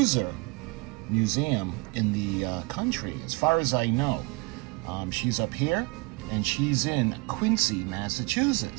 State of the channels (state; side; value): quieter; left; 27.9 dB